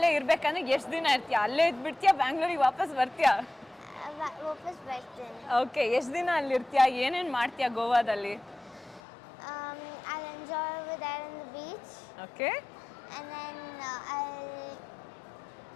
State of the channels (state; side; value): drops out; right; at 9.0 s